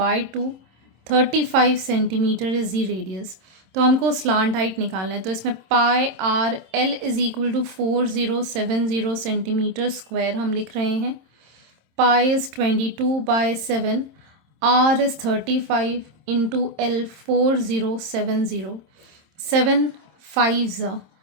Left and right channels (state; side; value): late; left; 27 ms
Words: 2. 35 centimeter is the radius. तो हमको slant height निकालना है. तो इसमें pi are L is equal to 4070 centimetre square हम लिख रहे हैं. Pi is 22/7, are is 35 into L 4070. 7 5s.